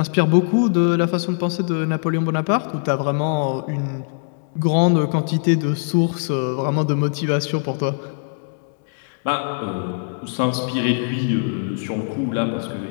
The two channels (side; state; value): right; silent; 65 dB below the other